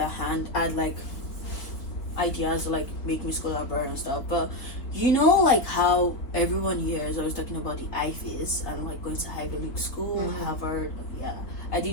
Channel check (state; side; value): late; right; 3.9 ms